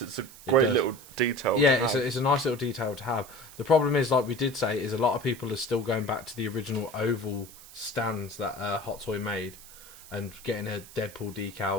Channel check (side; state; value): right; noise; hiss, 19 dB below the sound